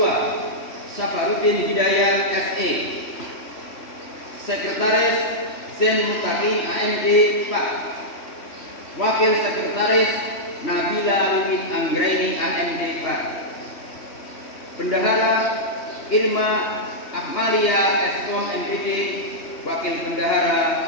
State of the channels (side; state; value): right; late; 3.1 ms